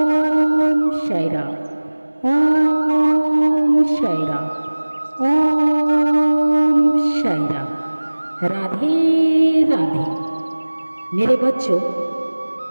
साई राम, ओम साई राम, ओम साई राम। राधे राधे। मेरे बच्चों,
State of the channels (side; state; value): both; inverted; correlation -1.00